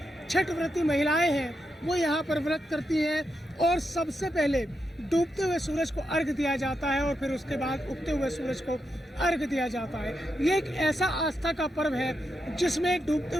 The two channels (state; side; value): normal; both; correlation 0.85